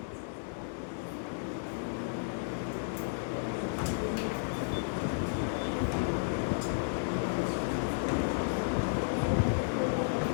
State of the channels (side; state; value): right; silent; 56 dB below the other